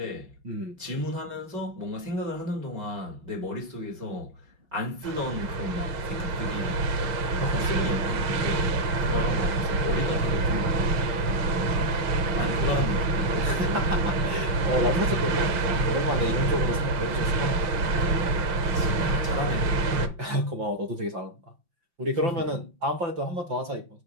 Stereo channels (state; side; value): late; left; 5.9 ms